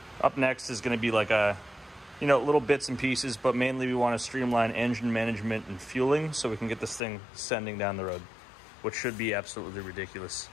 up next is going to be like a, you know, little bits and pieces, but mainly we want to streamline engine management and fueling so we can get this thing sending down the road, which should be absolutely ridiculous.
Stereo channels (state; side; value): drops out; right; at 7.0 s